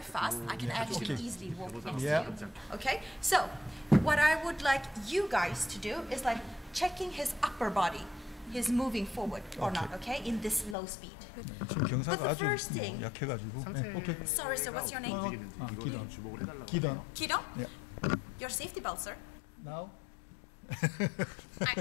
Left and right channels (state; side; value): drops out; right; at 10.8 s